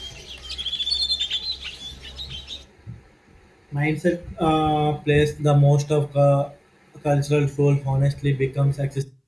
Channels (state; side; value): identical; both; correlation 1.00